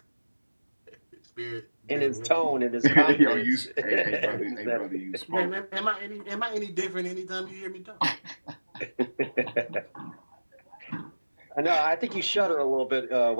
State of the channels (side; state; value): both; inverted; correlation -1.00